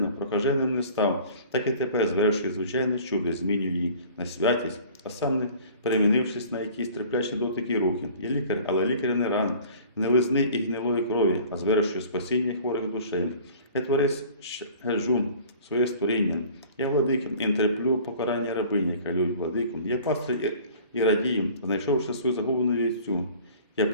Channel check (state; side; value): inverted; both; correlation -0.47